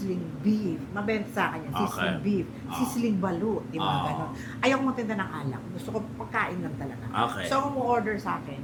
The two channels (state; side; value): identical; both; correlation 1.00